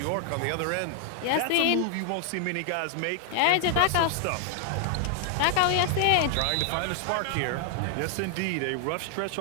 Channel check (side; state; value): both; different; correlation 0.00